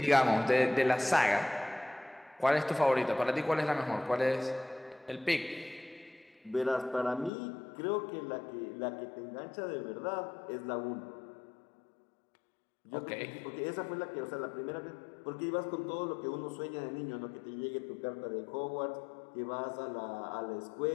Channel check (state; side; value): drops out; right; at 7.3 s